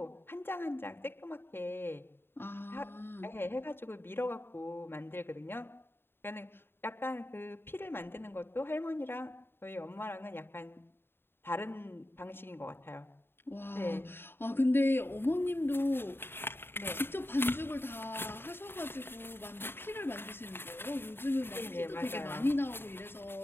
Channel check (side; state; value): right; late; 0.11 ms